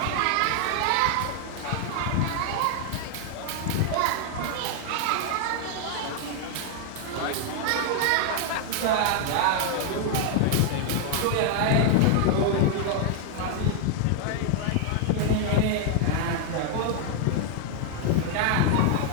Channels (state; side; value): different; both; correlation 0.00